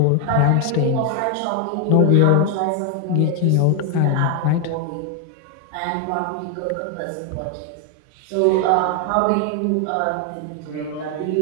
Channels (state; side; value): different; both; correlation 0.01